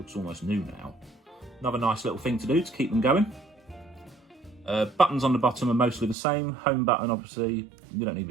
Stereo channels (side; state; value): left; drops out; at 6.2 s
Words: almost new now. Another nice little thing to do to keep them going. Buttons on the bottom are mostly the same. Home button, obviously, you don't need